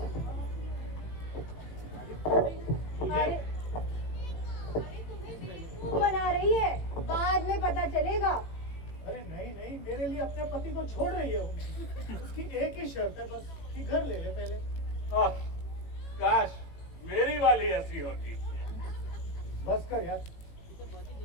अरे तुम्हें बेवकूफ बना रही है, बाद में पता चलेगा। अरे नहीं नहीं, मेरे लिए अपने पति को छोड़ रही है वो। उसकी एक ही शर्त है बस कि घर ले ले पहले। आह, काश मेरी वाली ऐसी होती। बस कर यार।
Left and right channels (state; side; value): late; right; 18 ms